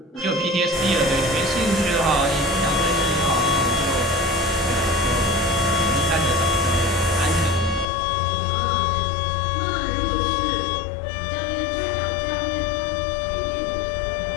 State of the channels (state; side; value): drops out; right; at 7.9 s